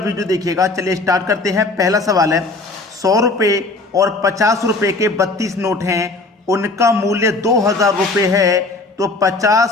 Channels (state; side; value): quieter; right; 3.3 dB